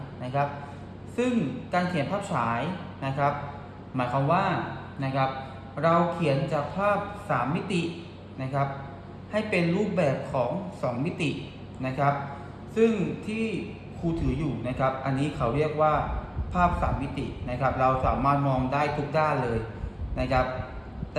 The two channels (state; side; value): identical; both; correlation 1.00